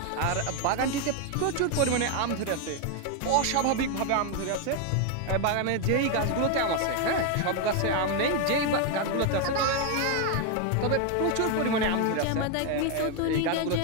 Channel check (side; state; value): both; different; correlation 0.01